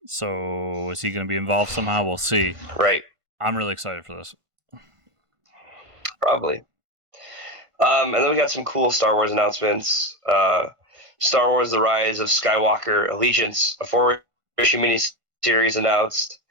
So is he going to be involved somehow? We'll see. Right. I'm really excited for this. Probably. And then we got some cool Star Wars announcements. Star Wars: The Rise of Skywalker Allegiance, a 4-issue miniseries announced.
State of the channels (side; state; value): left; late; 1.5 ms